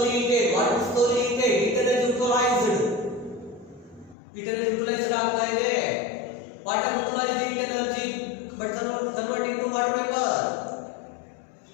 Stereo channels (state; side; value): drops out; right; at 4.2 s